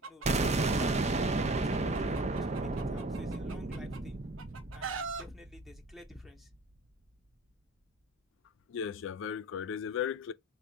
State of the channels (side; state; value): both; normal; correlation 0.42